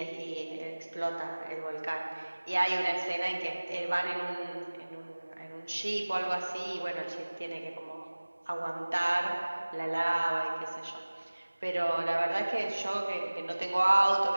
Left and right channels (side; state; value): both; inverted; correlation -1.00